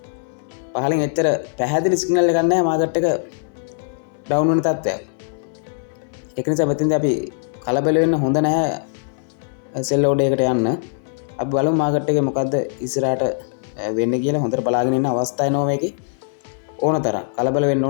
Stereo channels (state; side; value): silent; right; 65 dB below the other